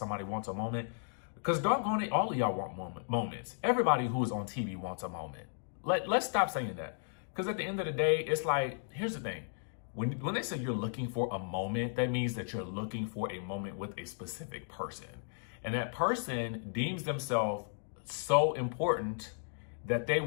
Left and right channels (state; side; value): silent; right; digital silence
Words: wants a moment. Because doggone it, all of y'all want moments. Everybody who is on TV wants a moment. Let's stop saying that. Because at the end of the day, it's like, here's the thing. When they say you're looking for a moment, that means that you're looking for a moment with a specific person. And that person deems themselves so important that they